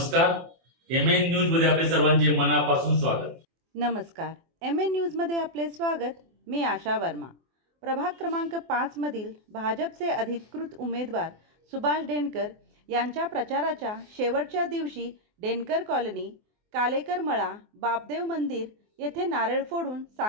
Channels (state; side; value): late; left; 24 ms